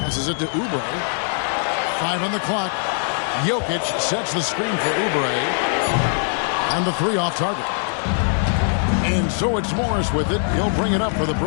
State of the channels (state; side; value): silent; right; 65 dB below the other